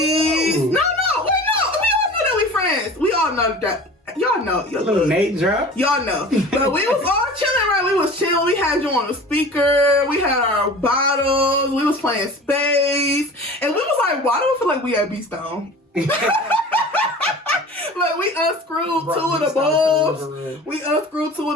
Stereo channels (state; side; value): normal; both; correlation 0.39